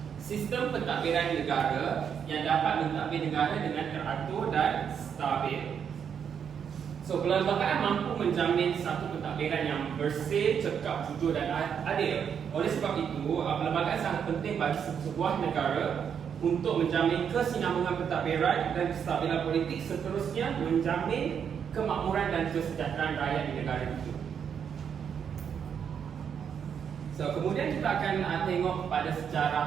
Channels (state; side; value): quieter; left; 7.6 dB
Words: sistem pentadbiran negara yang dapat mentadbir negara dengan teratur dan stabil. So, perlembagaan mampu menjamin satu pentadbiran yang bersih, cekap, jujur dan adil. Oleh sebab itu, perlembagaan sangat penting bagi sebuah negara untuk menjamin kesinambungan pentadbiran dan kestabilan politik, seterusnya menjamin kemakmuran dan kesejahteraan rakyat di negara itu. So, kemudian kita akan tengok pada